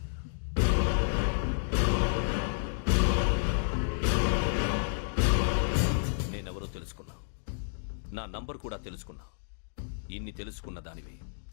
నేనెవరో తెలుసుకున్నావు, నా నంబర్ కూడా తెలుసుకున్నావు. ఇన్ని తెలుసుకున్న దానివి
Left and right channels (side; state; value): right; silent; digital silence